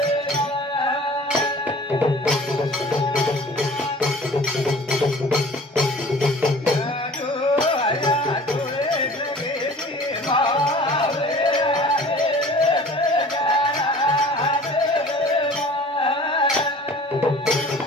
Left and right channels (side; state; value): both; normal; correlation 0.46